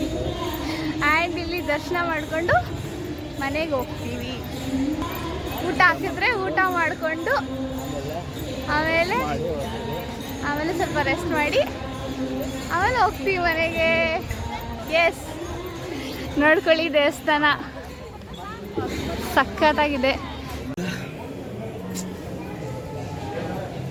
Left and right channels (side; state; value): both; identical; correlation 1.00